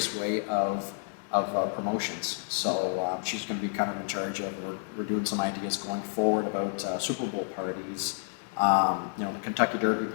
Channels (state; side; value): silent; right; 58 dB below the other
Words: of promotions. So she's going to be kind of in charge of, we're doing some ideas going forward about Super Bowl parties, the Kentucky Derby